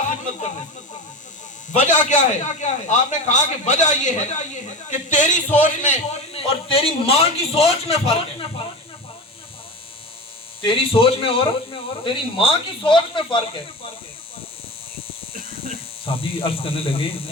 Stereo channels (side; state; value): both; normal; correlation 0.27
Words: خدمت کرنے سے۔ وجہ کیا ہے؟ آپ نے کہا کہ وجہ یہ ہے کہ تیری سوچ میں اور تیری ماں کی سوچ میں فرق ہے، تیری سوچ میں اور تیری ماں کی سوچ میں فرق ہے۔ صحابی عرض کرنے لگے